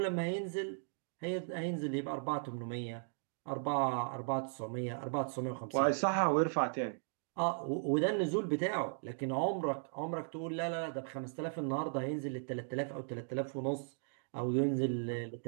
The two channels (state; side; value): silent; left; digital silence